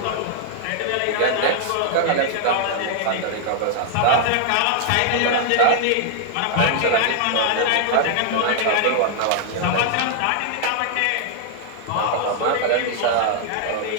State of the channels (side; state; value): both; different; correlation 0.00